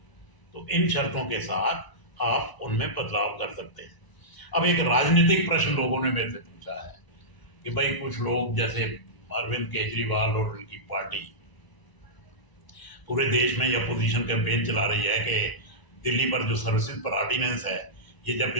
तो इन शर्तों के साथ आप उनमें बदलाव कर सकते हैं। अब एक राजनीतिक प्रश्न लोगों ने मेरे से पूछा है कि भाई कुछ लोग जैसे अरविंद केजरीवाल और उनकी पार्टी पूरे देश में ये अपोजिशन कैंपेन चला रही है कि दिल्ली पर जो सर्विसेज पर ऑर्डिनेंस है, ये जब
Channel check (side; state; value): right; late; 1.0 ms